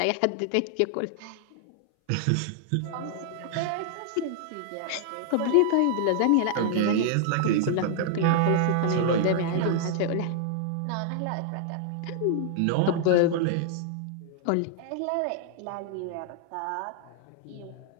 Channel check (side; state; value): both; different; correlation 0.00